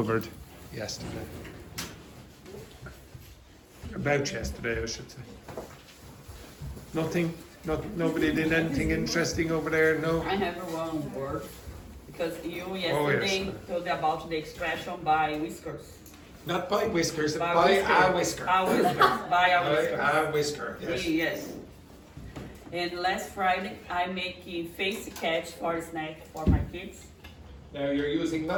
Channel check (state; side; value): identical; both; correlation 1.00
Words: yesterday? About yesterday, I should say. Nothing? Nobody did anything interesting over there? No? I have one word because you Oh, yesterday yes. told about the expression by whiskers. Not by whiskers, by whisker. a whisker. A whisker. By a whisker. By a whisker, yes. Yes. And last Friday, I make a face catch for a snack for my kids. Now you're using